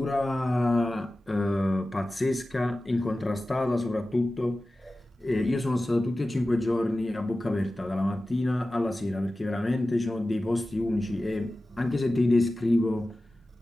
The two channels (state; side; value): normal; both; correlation 0.95